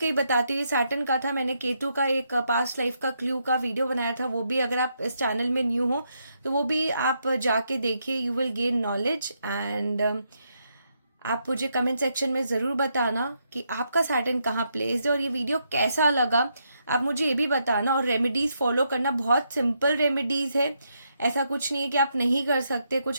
ही बताती हूँ. सैटर्न का था, मैंने केतु का एक पास्ट लाइफ का क्लू का वीडियो बनाया था, वो भी अगर आप इस चैनल में न्यू हो तो वो भी आप जाके देखिए. You will gain knowledge. And आप मुझे कमेंट सेक्शन में ज़रूर बताना कि आपका सैटर्न कहाँ प्लेस्ड है और ये वीडियो कैसा लगा. आप मुझे ये भी बताना. और रेमेडीज़ फॉलो करना, बहुत सिंपल रेमेडीज़ है, ऐसा कुछ नहीं है कि आप नहीं कर सकते,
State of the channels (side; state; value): both; inverted; correlation -0.79